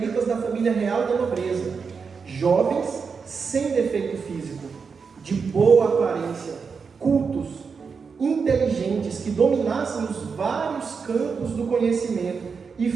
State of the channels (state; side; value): quieter; left; 5.5 dB